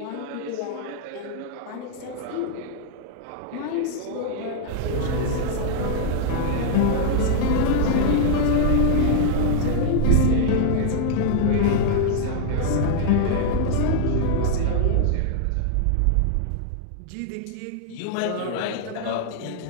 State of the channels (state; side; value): different; both; correlation -0.01